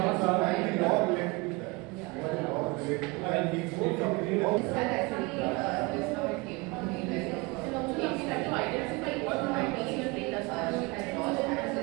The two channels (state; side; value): quieter; left; 26.1 dB